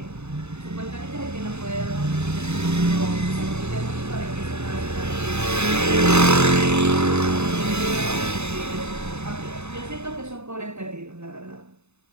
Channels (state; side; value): late; left; 0.81 ms